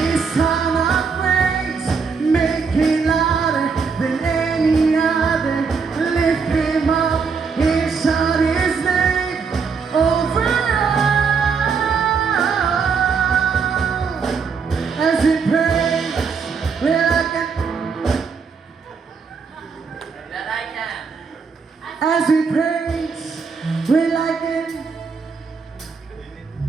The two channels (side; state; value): left; quieter; 5.4 dB